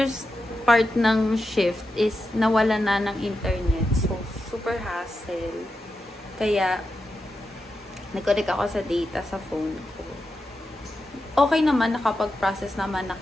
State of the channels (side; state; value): both; normal; correlation 0.88